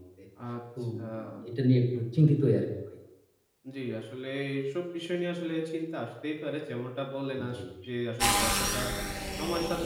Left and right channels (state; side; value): identical; both; correlation 1.00